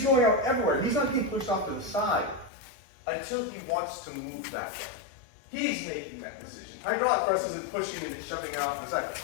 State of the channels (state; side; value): drops out; right; at 2.5 s